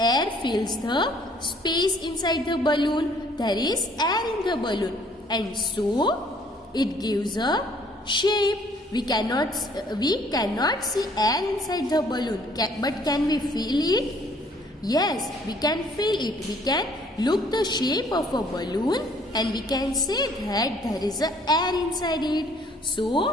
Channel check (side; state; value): both; normal; correlation 0.60